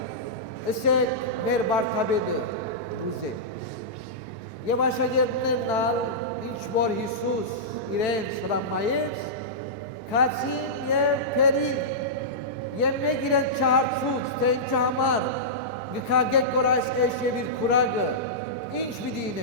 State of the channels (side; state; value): both; normal; correlation -0.15